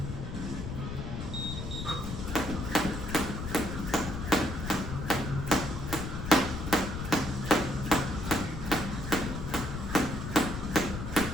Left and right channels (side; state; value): left; noise; rumble, 6 dB below the sound